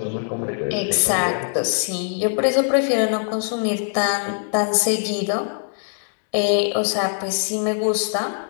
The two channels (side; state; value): right; silent; digital silence